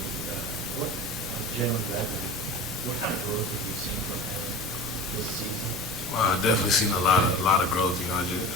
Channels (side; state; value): both; normal; correlation 0.34